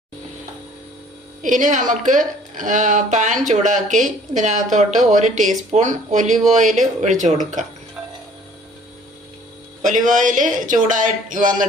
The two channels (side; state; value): both; normal; correlation 0.54